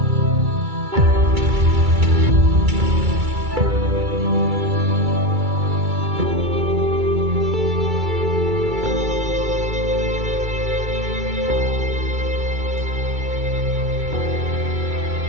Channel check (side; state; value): left; late; 2.3 ms